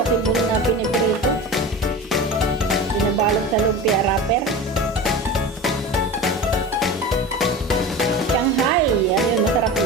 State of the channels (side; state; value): both; normal; correlation 0.31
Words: na piniprito. Binabalot sa lumpia wrapper. Shanghai. Ano yun? Masarap